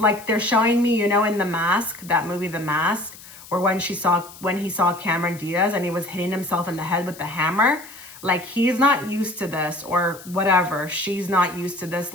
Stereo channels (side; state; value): left; noise; hiss, 18 dB below the sound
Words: like they're showing me, in The Mask, that movie, The Mask, where when he saw Cameron Diaz and he was hitting himself in the head with the hammer. Like, he's not used to this, or whatever. She's not used to this.